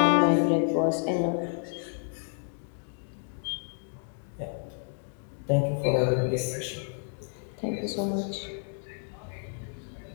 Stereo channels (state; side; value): silent; right; 58 dB below the other